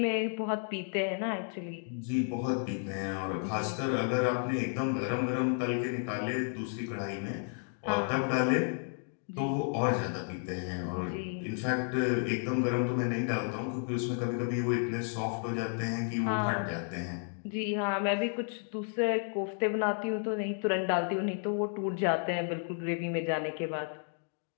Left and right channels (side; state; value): right; silent; 56 dB below the other